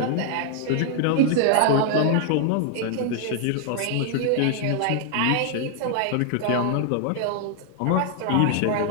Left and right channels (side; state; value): both; different; correlation 0.00